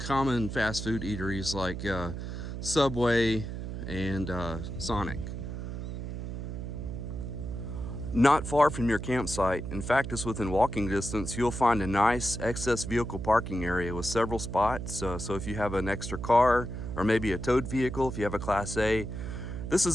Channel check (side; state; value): right; noise; hum, 6 dB below the sound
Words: fast food eateries like Subway and Sonic. Not far from your campsite, in fact it's within walking distance, you'll find a nice excess vehicle parking area with several spots. So if you have an extra car or maybe a towed vehicle, if you have a Class A, this